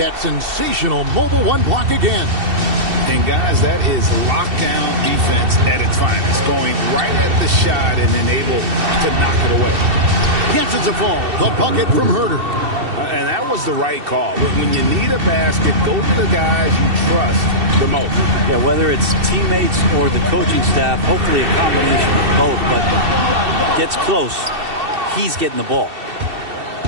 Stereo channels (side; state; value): left; late; 2.7 ms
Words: sensational mobile 1 block again. And guys, that is lockdown defense at its finest. Going right at the shot and then able to knock it away. Yes, it's a fall. The bucket from Herter. And that was the right call. When you need a basket, go to the guys you trust the most. Yeah, whether it's teammates or the coaching staff, hopefully a combination of both, but gets close, he's getting the ball.